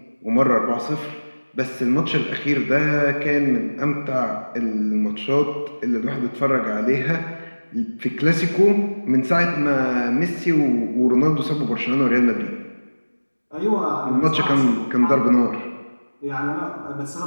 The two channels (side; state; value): both; inverted; correlation -1.00